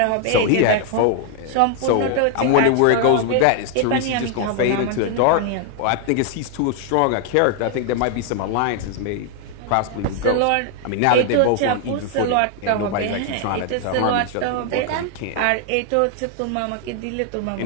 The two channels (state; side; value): different; both; correlation 0.00